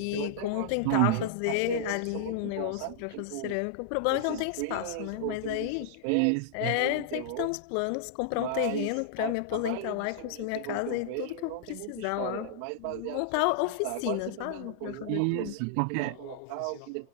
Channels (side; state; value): both; different; correlation -0.01